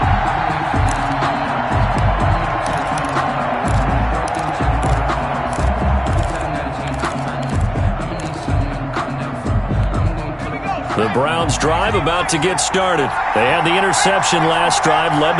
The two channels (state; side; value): identical; both; correlation 1.00